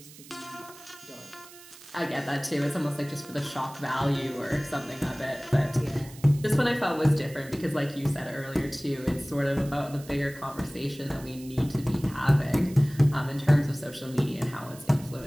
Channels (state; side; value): noise; right; hiss, 19 dB below the sound